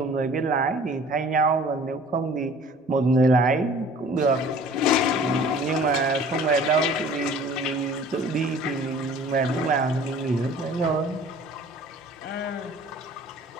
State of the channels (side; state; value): both; normal; correlation 0.48